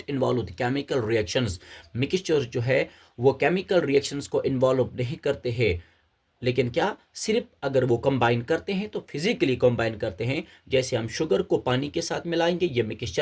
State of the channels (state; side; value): identical; both; correlation 1.00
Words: involve the chemical reactions. Mixture जो है वो केमिकल रिएक्शंस को इन्वॉल्व नहीं करते हैं, लेकिन क्या सिर्फ अगर वो कंबाइन करते हैं तो फिजिकली कंबाइन करते हैं। जैसे हम शुगर को पानी के साथ मिलाएंगे, ये